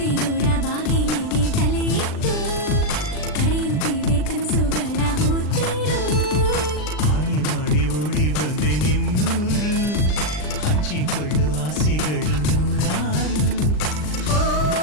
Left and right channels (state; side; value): late; right; 39 ms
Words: ಬಾಗಿಲಿಗೆ ತಲೆ ಇಟ್ಟು